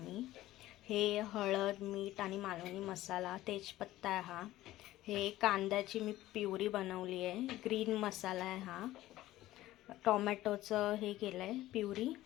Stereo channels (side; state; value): right; quieter; 15.6 dB